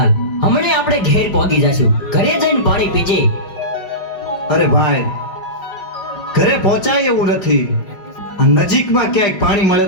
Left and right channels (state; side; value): late; right; 5.4 ms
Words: હમણે આપણે ઘેર પહોંચી જશું. ઘરે જઈને પાણી પીજે. અરે ભાઈ, ઘરે પહોંચાય એવું નથી. આ નજીકમાં ક્યાંક પાણી મળે